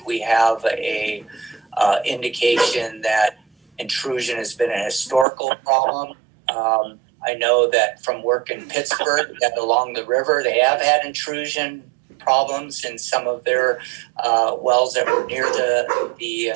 we have a indication that intrusion has been a historical problem. I know that from work in Pittsburgh, that along the river, they have had intrusion problems in some of their wells that were near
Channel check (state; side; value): drops out; left; at 5.2 s